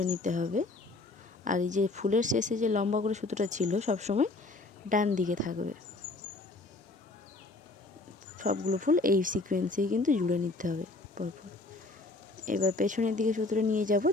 নিতে হবে। আর এই যে ফুলের শেষে যে লম্বা করে সুতোটা ছিল সবসময় ডান দিকে থাকবে। সবগুলো ফুল এই সিকোয়েন্সেই কিন্তু জুড়ে নিতে হবে পরপর। এবার পেছনের দিকে সুতোটা নিয়ে যাব,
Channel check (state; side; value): quieter; right; 3.2 dB